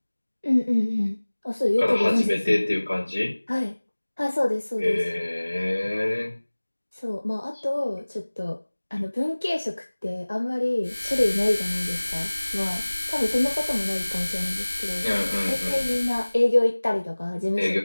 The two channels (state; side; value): inverted; both; correlation -1.00